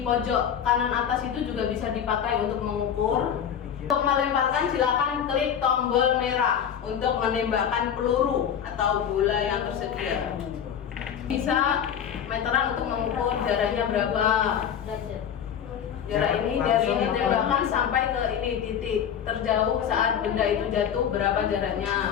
pojok kanan atas itu juga bisa dipakai untuk mengukur. Untuk melemparkan silakan klik tombol merah untuk menembakkan peluru atau bola yang tersedia. Bisa meteran untuk mengukur jaraknya berapa. Jarak ini dari ini tembakan sampai ke ini titik terjauh saat benda itu jatuh berapa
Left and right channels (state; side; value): quieter; right; 8.6 dB